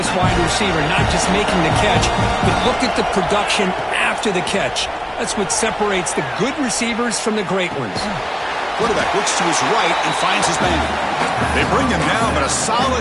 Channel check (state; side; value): identical; both; correlation 1.00